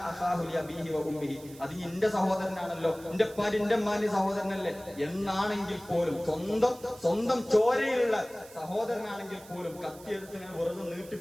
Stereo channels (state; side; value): noise; right; hiss, 21 dB below the sound